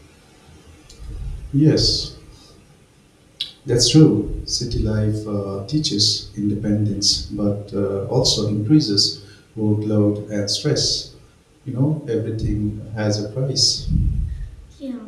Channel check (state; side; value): identical; both; correlation 1.00